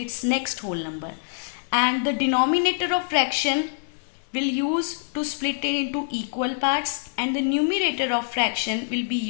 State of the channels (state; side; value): silent; right; digital silence